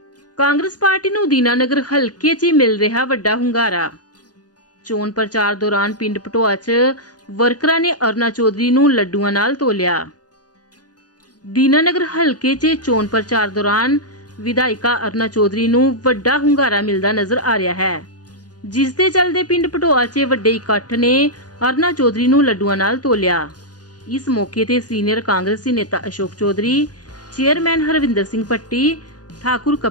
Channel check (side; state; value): right; late; 0.69 ms